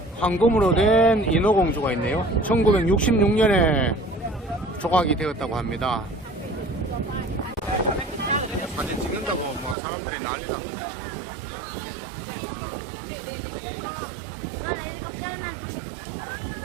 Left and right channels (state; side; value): drops out; left; at 9.8 s